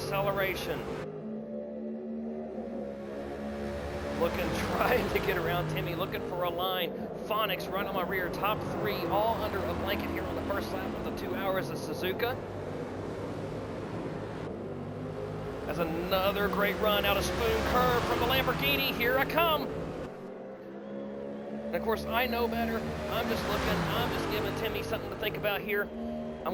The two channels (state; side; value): identical; both; correlation 1.00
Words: Looking, trying to get around Timmy, looking for a line. Phonics right on my rear, top three, all under a blanket here on the first lap of the 2 hours of Suzuka. That's another great run out of Spoon Curve from the Lamborghini. Here I come. And of course, I know better. I'm just looking, I'm just giving Timmy something to think about here. I'm